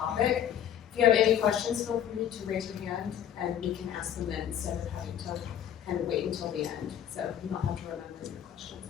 if you have any questions, feel free to raise your hand and we can ask them then instead of having to kind of wait until the end. So you don't have to remember your questions,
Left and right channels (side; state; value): right; quieter; 10.0 dB